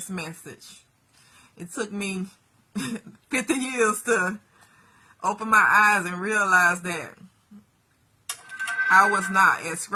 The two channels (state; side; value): identical; both; correlation 1.00